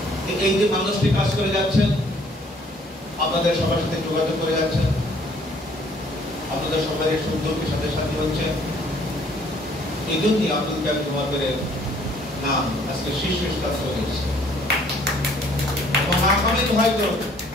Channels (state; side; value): normal; both; correlation 0.60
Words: এই যে মানুষটি কাজ করে যাচ্ছেন, আপনাদের সবার সাথে যোগাযোগ করে যাচ্ছেন, আপনাদের সবাই সুন্দরকে সাথে সাথে হচ্ছে, এই জন্যই আব্দুল কাদের জমাদারের নাম আজকে শীর্ষ স্থান চলে এসেছে। এবং আগামী হয়তো